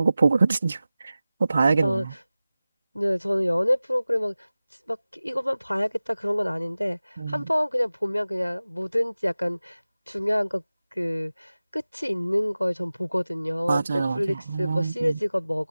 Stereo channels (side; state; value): both; inverted; correlation -0.96